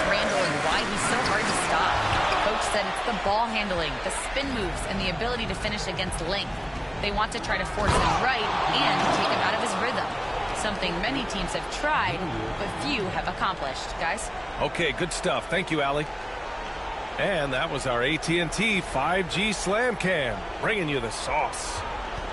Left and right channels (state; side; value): identical; both; correlation 1.00